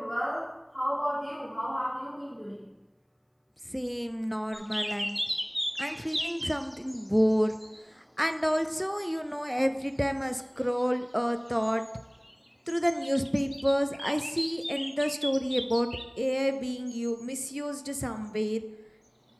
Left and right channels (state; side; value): identical; both; correlation 1.00